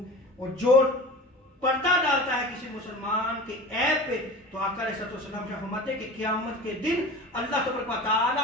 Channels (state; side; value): normal; both; correlation 0.35